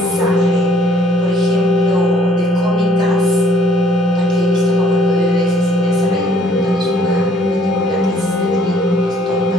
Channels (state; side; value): normal; both; correlation 0.61